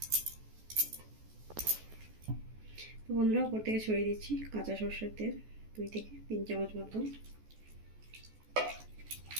তো বন্ধুরা, উপর থেকে ছড়িয়ে দিচ্ছি কাঁচা সরষের তেল 2 থেকে 3 চামচ মতো।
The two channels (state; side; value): late; left; 14 ms